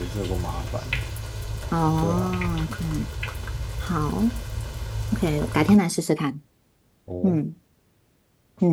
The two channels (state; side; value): identical; both; correlation 1.00